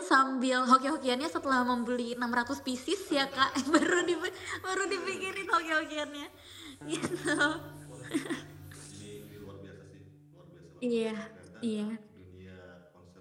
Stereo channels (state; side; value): identical; both; correlation 1.00